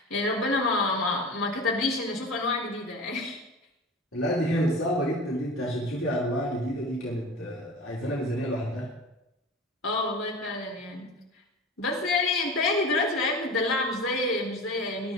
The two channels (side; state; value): both; normal; correlation 0.34